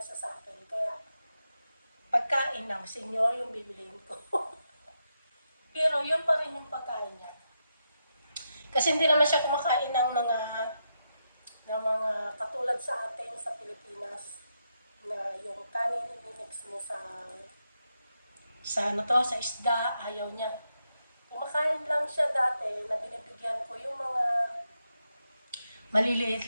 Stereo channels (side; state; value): both; inverted; correlation -0.84